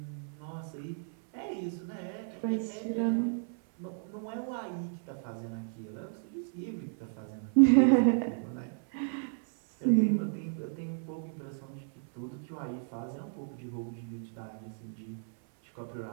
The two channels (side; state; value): left; silent; 56 dB below the other